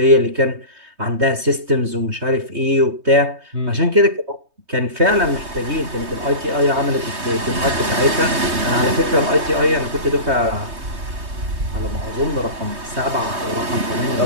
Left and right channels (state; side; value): late; left; 3.2 ms